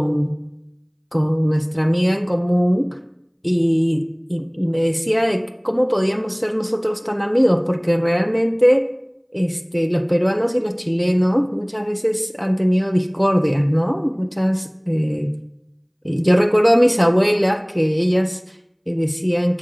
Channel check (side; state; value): both; identical; correlation 1.00